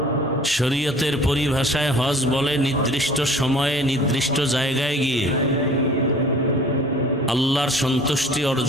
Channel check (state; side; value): normal; both; correlation 0.48